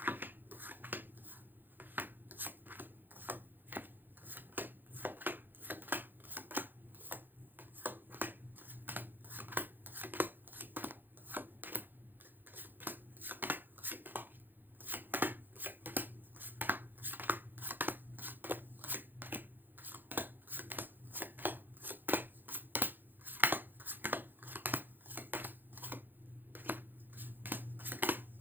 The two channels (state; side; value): late; left; 0.090 ms